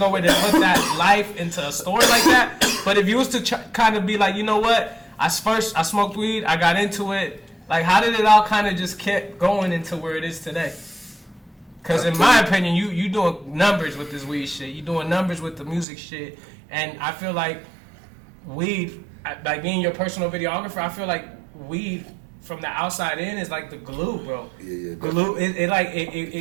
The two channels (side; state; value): left; drops out; at 15.9 s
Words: way to put that life into a story like that. But if you was to kind of be like, you know what? I smoked weed. I got into it. Like, how did it all kind of just kept going into where it is today? Because in my opinion, you doing numbers with this weed shit. You doing numbers with the music shit. And I feel like weed, like being your personal videographer, I feel like weed from the outside in is like the glue, bro. Yeah. Glue.